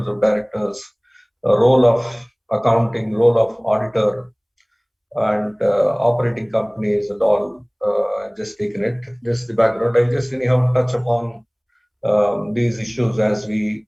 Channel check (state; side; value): identical; both; correlation 1.00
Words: of directors, role of accounting, role of auditor, and operating companies and all. Just taken it, just the background. I just anyhow touch upon these issues as we